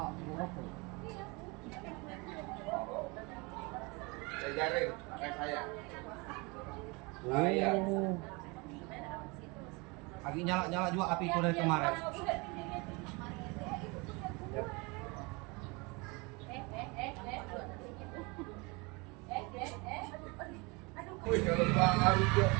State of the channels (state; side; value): quieter; left; 27.6 dB